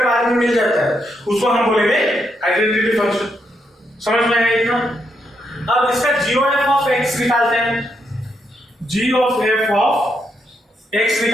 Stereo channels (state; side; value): normal; both; correlation 0.80